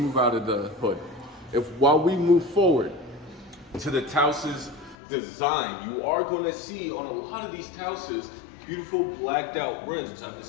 out of the hood. While we move forward to the TAOS's design, you are going to see on a lot of these TAOS's beautiful blacked out rims. I've been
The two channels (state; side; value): drops out; right; at 5.0 s